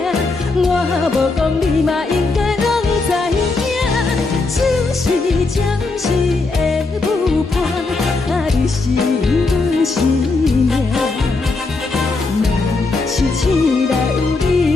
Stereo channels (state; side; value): quieter; right; 3.6 dB